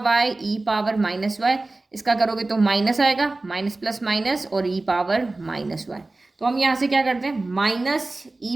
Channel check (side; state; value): left; quieter; 3.1 dB